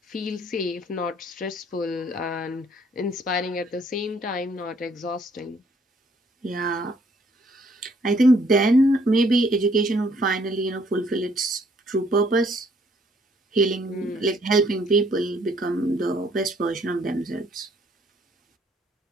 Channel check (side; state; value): both; normal; correlation 0.65